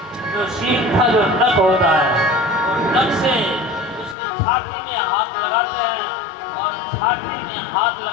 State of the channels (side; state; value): right; drops out; at 4.2 s